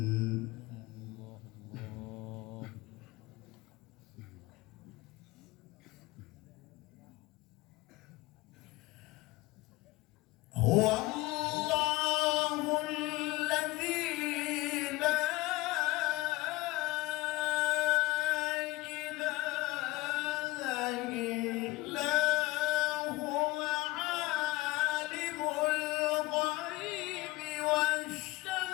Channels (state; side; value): quieter; right; 19.9 dB